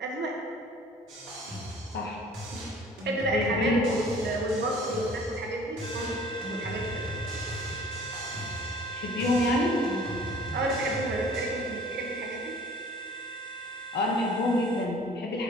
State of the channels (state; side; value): normal; both; correlation 0.49